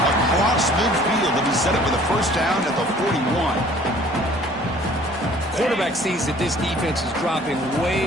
across midfield, and he set it for the 1st down at the 41. Quarterback sees that this defense is dropping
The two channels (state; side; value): normal; both; correlation 0.53